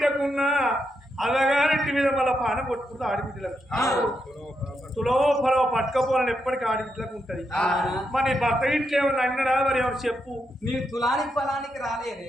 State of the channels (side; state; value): both; normal; correlation 0.83